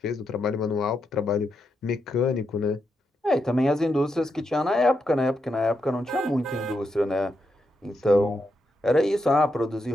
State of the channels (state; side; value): normal; both; correlation 0.83